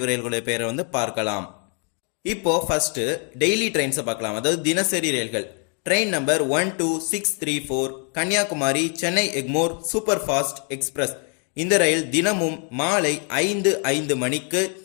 ரயில்களுடைய பெயரை வந்து பார்க்கலாம். இப்போ ஃபர்ஸ்ட் டெய்லி ட்ரெயின்ஸை பார்க்கலாம், அதாவது தினசரி ரயில்கள். Train number 12634 Kanyakumari Chennai Egmore super fast express. இந்த ரயில் தினமும் மாலை 5:05 மணிக்கு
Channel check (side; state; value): right; quieter; 39.8 dB